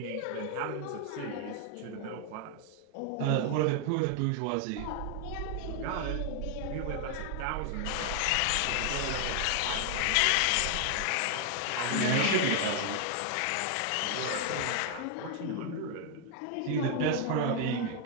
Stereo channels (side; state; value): both; different; correlation 0.00